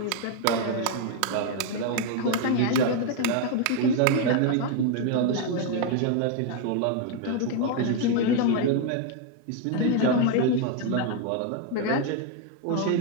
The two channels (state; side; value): different; both; correlation 0.01